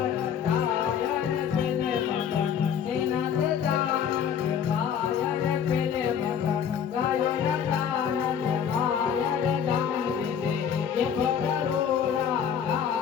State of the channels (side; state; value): right; quieter; 8.1 dB